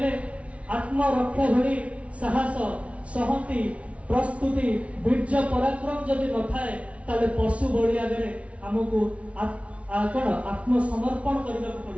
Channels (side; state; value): left; late; 0.063 ms